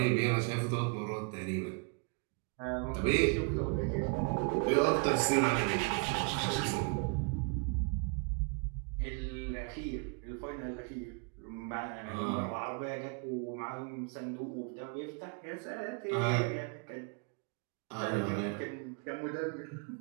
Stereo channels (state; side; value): quieter; left; 33.3 dB